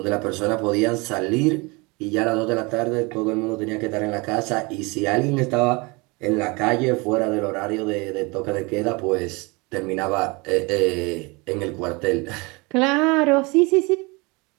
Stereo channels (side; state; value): left; quieter; 26.9 dB